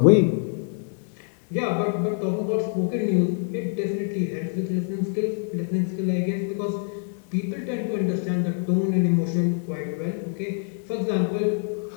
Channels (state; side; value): silent; right; 58 dB below the other